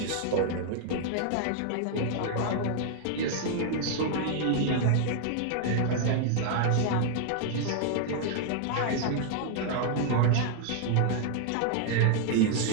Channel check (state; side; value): different; both; correlation 0.00